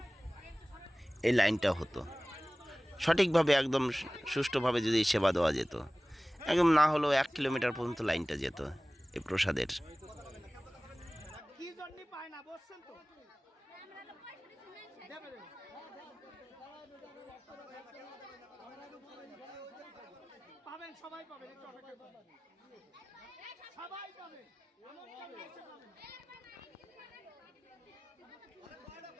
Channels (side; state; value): both; normal; correlation 0.98